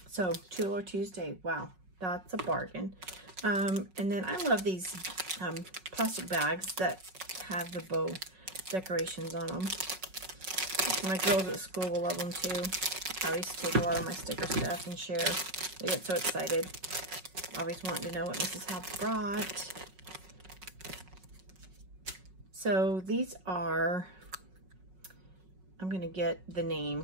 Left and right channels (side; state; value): left; late; 5.4 ms